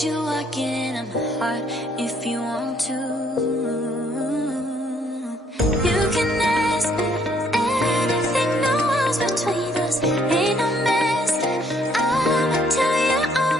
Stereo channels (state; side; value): normal; both; correlation 0.66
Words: you walk into my heart if you want to. You can ask me anything, no walls between us, ain't no mask. I'ma tell you all